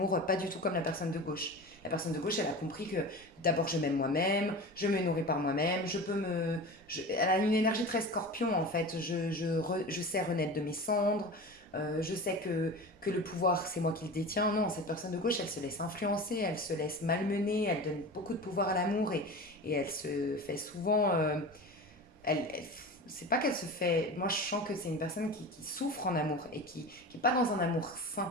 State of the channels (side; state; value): both; normal; correlation 0.32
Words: pas du tout comme la personne de gauche. La personne de gauche, elle a compris que d'abord je m'aime moi-même, je me nourris par moi-même, elle a une énergie très scorpion en fait. Je sais renaître de mes cendres, je sais que le pouvoir c'est moi qui le détiens. Non, cette personne de gauche, elle se laisse influencer, elle se laisse malmener, elle donne beaucoup de pouvoir à l'amour et elle se fait souvent elle c'est pas qu'elle se fait. Moi, je sens que c'est une personne qui souffre en amour et qui n'est pas dans un amour